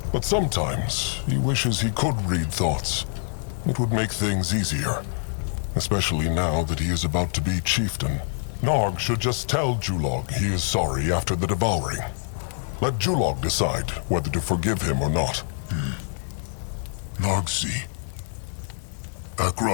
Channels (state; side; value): silent; right; 61 dB below the other